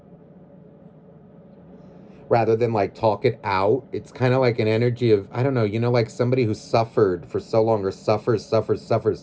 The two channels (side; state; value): both; identical; correlation 1.00